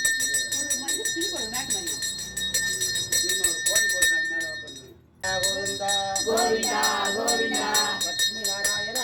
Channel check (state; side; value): identical; both; correlation 1.00